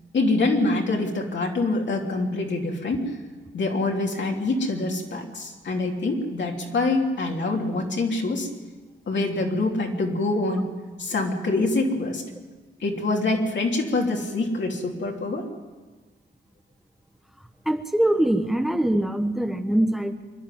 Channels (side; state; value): both; normal; correlation 0.65